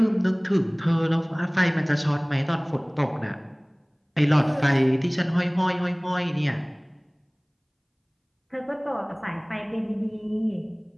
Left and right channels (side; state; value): both; identical; correlation 1.00